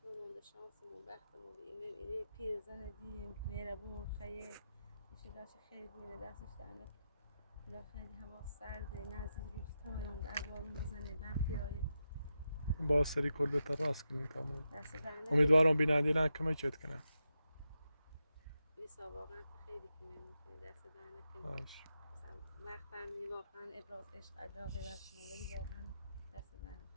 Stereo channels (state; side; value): inverted; both; correlation -0.88